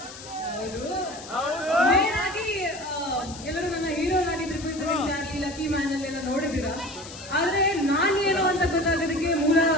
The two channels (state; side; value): noise; left; hiss, 15 dB below the sound